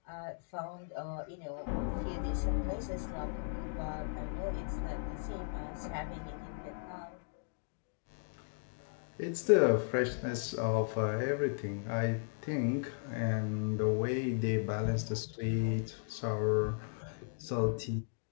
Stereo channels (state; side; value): silent; right; digital silence